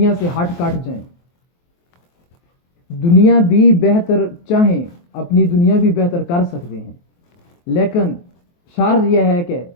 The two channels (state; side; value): late; right; 23 ms